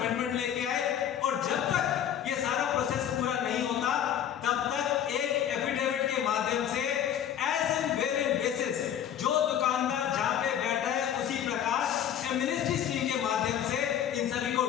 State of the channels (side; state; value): right; quieter; 9.8 dB